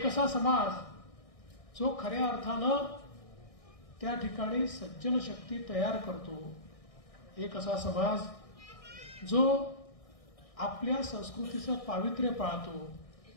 असा समाज जो खऱ्या अर्थानं त्या ठिकाणी सज्जन शक्ती तयार करतो, एक असा समाज जो आपल्या संस्कृतीचं पावित्र्य पाळतो,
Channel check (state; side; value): late; right; 1.6 ms